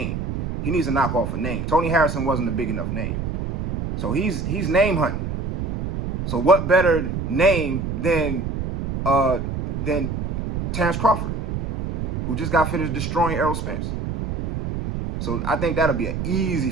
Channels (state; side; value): noise; right; rumble, 3 dB below the sound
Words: He needs to knock off a name. Tony Harrison wasn't a big enough name. So he's name hunting. So what better name than Terrence Crawford, who just got finished destroying Errol Spence. So I think that'll be an easy